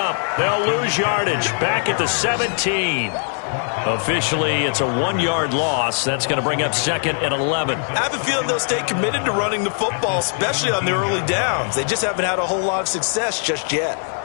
They'll lose yardage. Back at the 17. Officially, it's a 1-yard loss. That's going to bring up 2nd and 11. I have a feeling they'll stay committed to running the football, especially on the early downs. They just haven't had a whole lot of success just yet.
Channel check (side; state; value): right; silent; 65 dB below the other